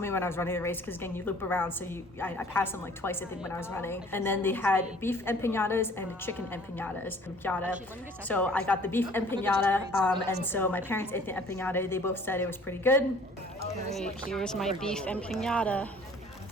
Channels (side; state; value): both; normal; correlation 0.53